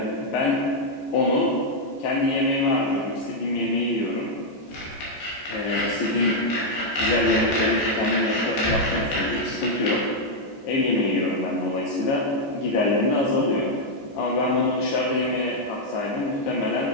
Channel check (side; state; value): right; late; 14 ms